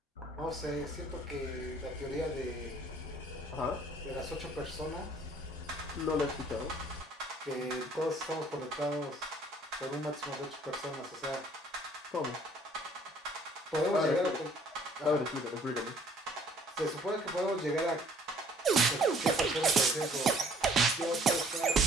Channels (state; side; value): normal; both; correlation 0.57